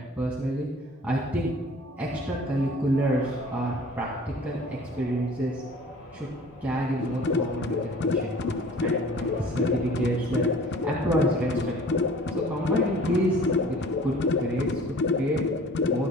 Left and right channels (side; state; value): both; normal; correlation 0.47